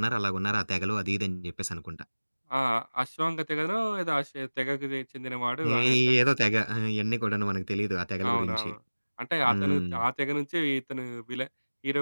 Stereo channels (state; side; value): inverted; both; correlation -1.00